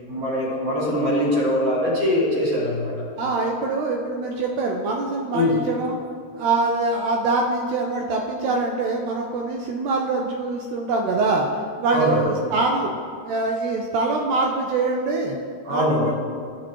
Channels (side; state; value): left; late; 13 ms